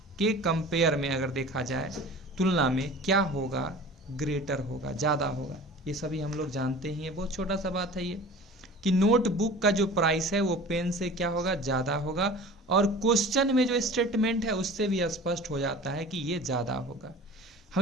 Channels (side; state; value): both; normal; correlation 0.40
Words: के कंपेयर में अगर देखा जाए तुलना में क्या होगा, ग्रेटर होगा, ज़्यादा होगा। ये सभी हम लोग जानते ही हैं, बहुत छोटा सा बात है ये कि नोटबुक का जो प्राइस है वो पेन से क्या होगा, ज़्यादा होगा। और क्वेश्चन में जो स्टेटमेंट है उससे भी स्पष्ट हो जाता है कि ये ज़्यादा होगा।